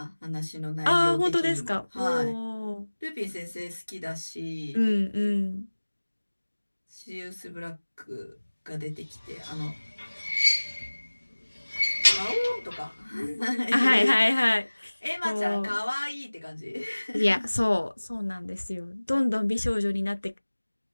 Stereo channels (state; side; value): inverted; both; correlation -1.00